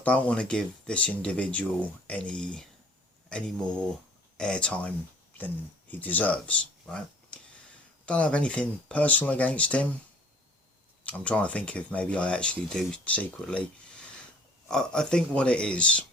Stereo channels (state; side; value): normal; both; correlation 0.53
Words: don't want to give this individual any more airtime than he deserves, right? Don't have anything personal against him. I'm trying to think if maybe I actually do secretly. I think what it is